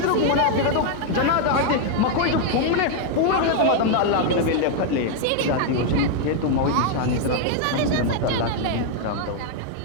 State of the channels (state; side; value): different; both; correlation 0.00